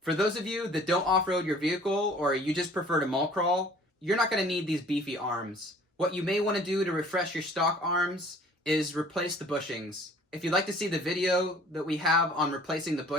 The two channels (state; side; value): normal; both; correlation 0.52